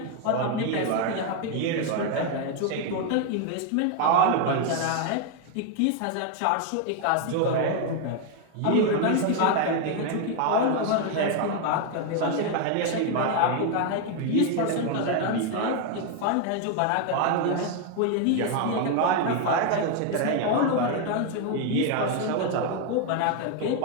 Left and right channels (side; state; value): both; different; correlation 0.01